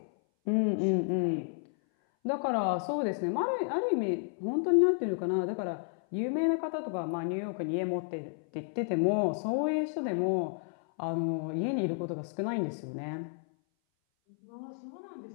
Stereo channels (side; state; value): right; silent; 57 dB below the other